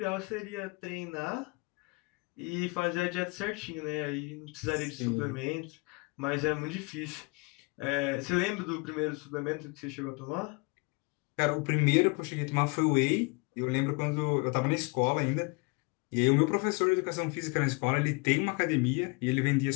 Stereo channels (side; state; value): right; quieter; 29.2 dB